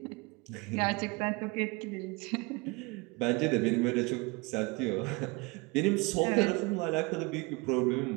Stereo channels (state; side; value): quieter; left; 26.2 dB